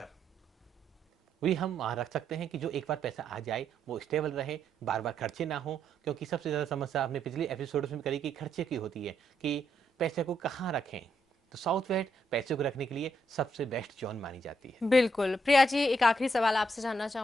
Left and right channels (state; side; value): normal; both; correlation 0.77